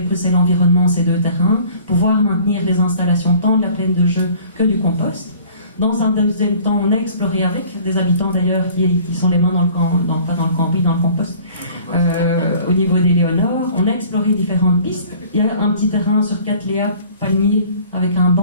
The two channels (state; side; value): inverted; both; correlation -0.49